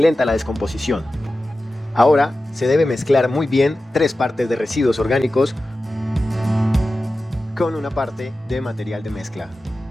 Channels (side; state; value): both; normal; correlation 0.94